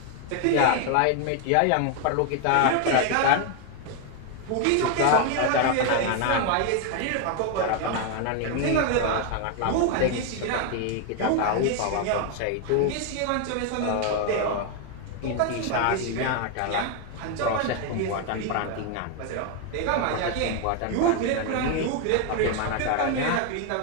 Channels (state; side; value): different; both; correlation 0.01